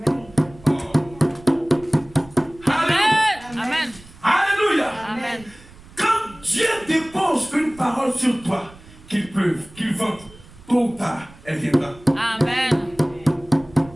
Alléluia. Amen. Alléluia. Amen. Quand Dieu dépose une parole sur toi, qu'il pleuve, qu'il vente, tôt ou tard, elle viendra. Amen.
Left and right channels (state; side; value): noise; right; rumble, 22 dB below the sound